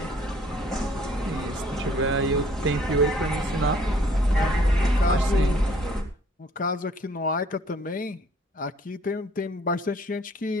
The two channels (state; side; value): normal; both; correlation 0.59